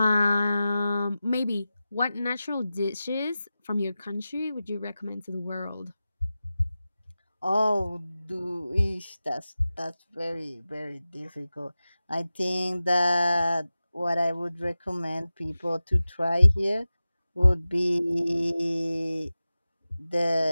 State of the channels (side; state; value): both; inverted; correlation -0.94